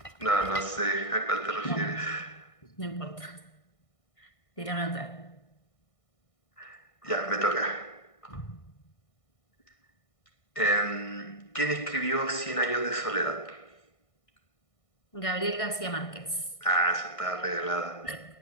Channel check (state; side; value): late; right; 1.6 ms